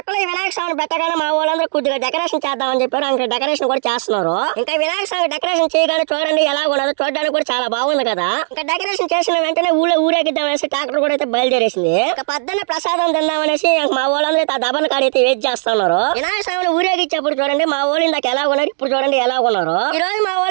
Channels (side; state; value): left; silent; 67 dB below the other